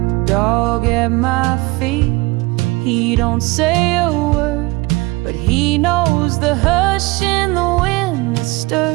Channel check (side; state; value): left; quieter; 23.0 dB